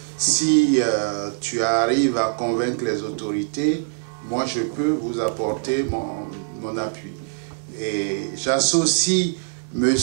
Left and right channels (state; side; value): silent; left; 64 dB below the other